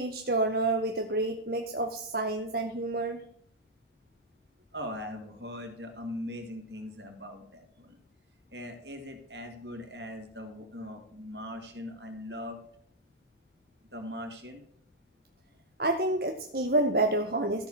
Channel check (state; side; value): normal; both; correlation -0.04